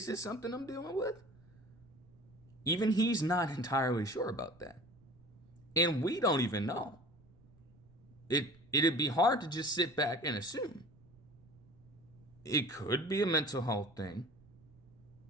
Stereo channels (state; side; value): noise; right; rumble, 26 dB below the sound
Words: this something I'm dealing with? Even he's not entirely sure about that. And we don't even know. It'd be hard to just sit back and assume. It could be a mental health thing.